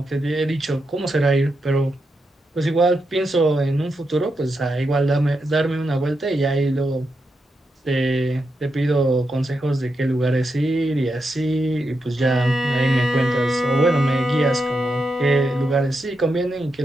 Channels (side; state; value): both; normal; correlation 0.85